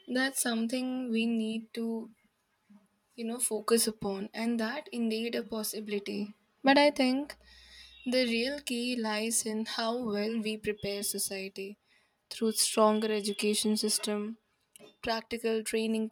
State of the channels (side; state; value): both; identical; correlation 1.00